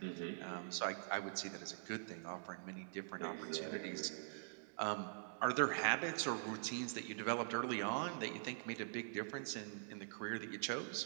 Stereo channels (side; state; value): left; silent; digital silence